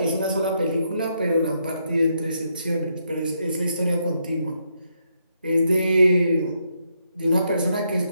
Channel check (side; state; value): both; inverted; correlation -0.78